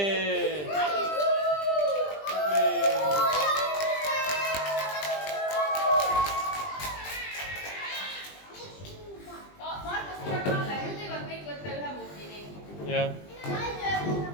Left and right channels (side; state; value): right; late; 20 ms